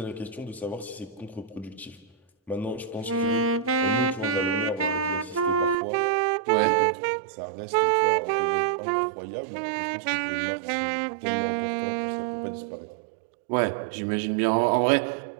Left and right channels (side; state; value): left; drops out; at 5.8 s